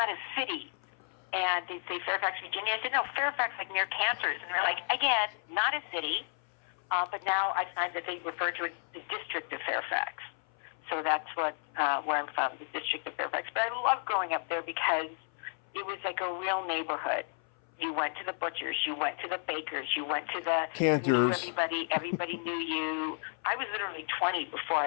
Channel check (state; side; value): silent; right; 56 dB below the other